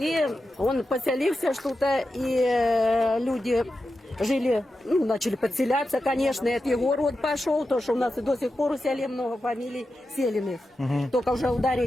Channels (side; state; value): both; normal; correlation 0.90